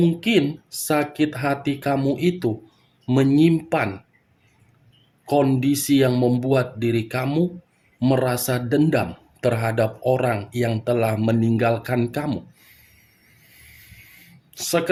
sakit hati kamu itu menyimpan kondisi yang membuat diri kamu merasa dendam terhadap orang yang telah meninggalkan kamu.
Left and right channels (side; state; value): both; identical; correlation 1.00